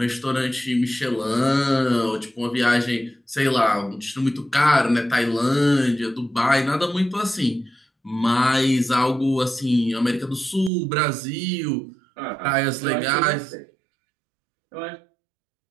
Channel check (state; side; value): drops out; left; at 10.7 s